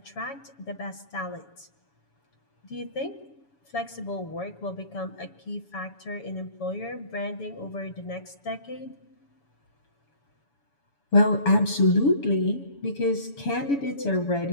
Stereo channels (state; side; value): late; right; 7.1 ms